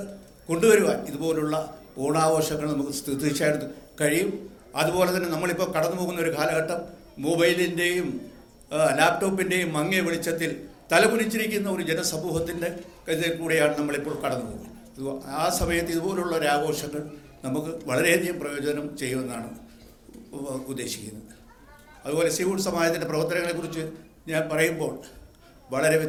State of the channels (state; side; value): identical; both; correlation 1.00